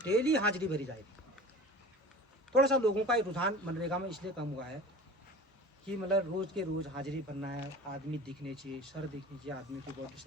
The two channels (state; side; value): normal; both; correlation 0.39